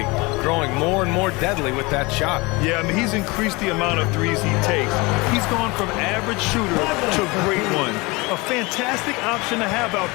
growing more and more deadly with that shot. Yeah, I mean, he's increased the amount of threes he takes. He's gone from average shooter to a great one. A fantastic option to have out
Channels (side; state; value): right; quieter; 24.9 dB